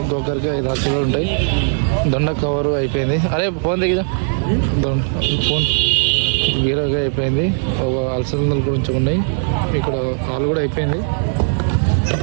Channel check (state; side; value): silent; left; 65 dB below the other